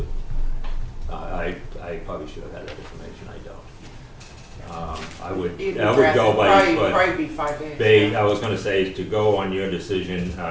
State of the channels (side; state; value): both; identical; correlation 1.00